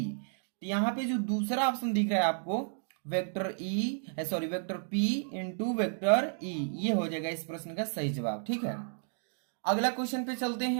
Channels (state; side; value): silent; left; digital silence